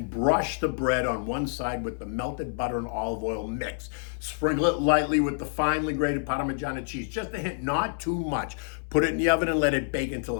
brush the bread on one side with the melted butter and olive oil mix. Sprinkle it lightly with the finely grated Parmegiana cheese, just a hint, not too much. Put it in the oven and let it bake until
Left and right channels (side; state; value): right; silent; digital silence